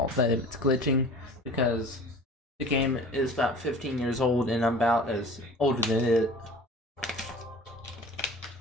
that it's glitching because the game is about 15 years old and I'm about as older than it.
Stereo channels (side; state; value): both; normal; correlation 0.42